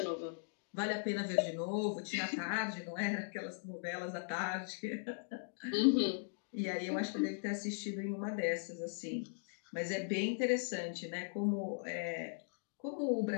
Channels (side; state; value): right; silent; digital silence